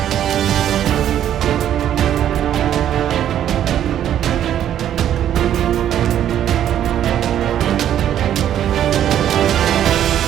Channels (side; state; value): left; quieter; 10.7 dB